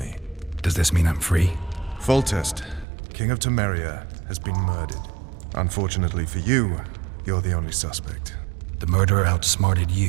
Does this mean I'm free? Foltest, King of Temeria, has been murdered. Unfortunately for you, you're the only suspect. The murderer outsmarted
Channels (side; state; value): left; drops out; at 2.9 s